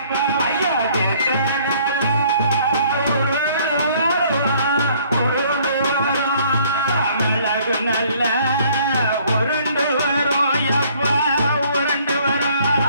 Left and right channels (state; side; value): inverted; both; correlation -0.60